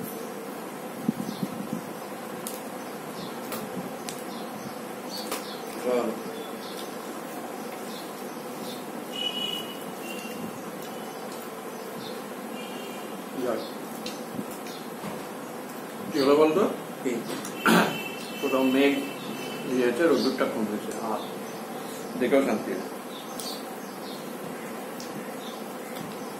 কি হলো বলতো? কোথাও মেঘ ইয়েছে, রোদ্দুরটা কমেছে, আর দেখেও শান্তি।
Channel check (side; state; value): both; identical; correlation 1.00